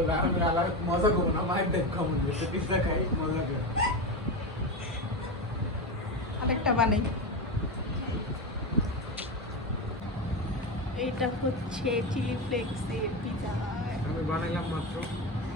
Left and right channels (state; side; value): normal; both; correlation 0.17